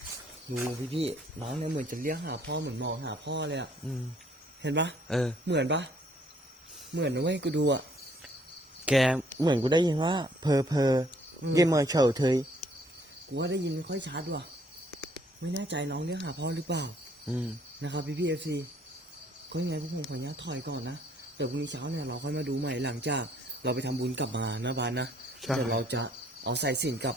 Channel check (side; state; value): both; normal; correlation 0.63